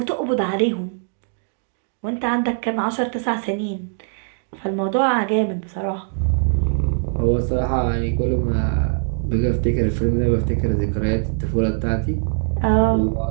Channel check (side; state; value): left; silent; digital silence